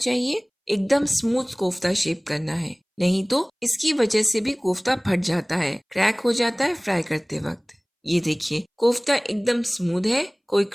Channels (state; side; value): identical; both; correlation 1.00